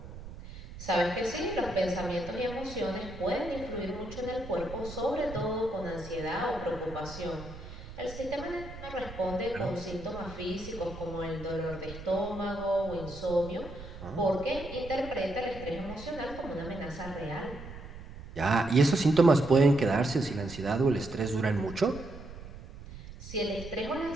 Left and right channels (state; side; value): noise; right; rumble, 13 dB below the sound